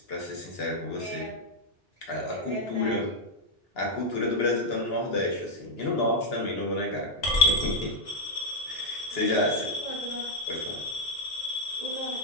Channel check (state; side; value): normal; both; correlation 0.00